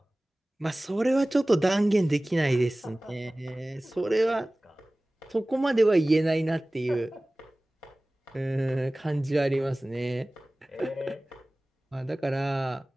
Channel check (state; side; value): normal; both; correlation 0.98